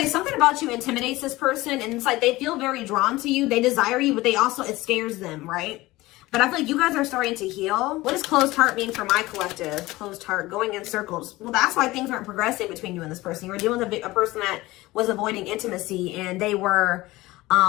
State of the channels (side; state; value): right; quieter; 19.1 dB